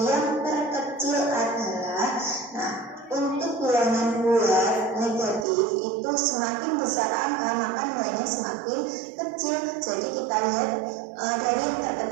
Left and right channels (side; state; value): left; drops out; at 5.5 s